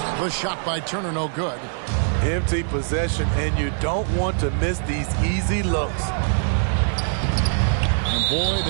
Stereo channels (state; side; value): silent; left; 64 dB below the other